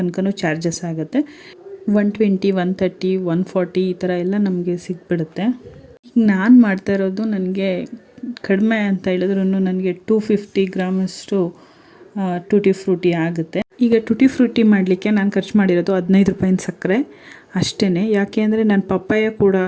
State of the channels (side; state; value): both; identical; correlation 1.00